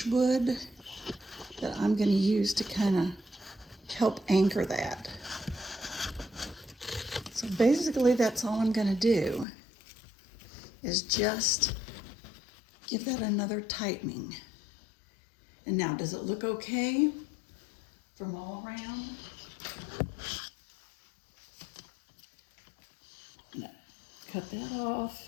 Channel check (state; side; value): drops out; right; at 9.5 s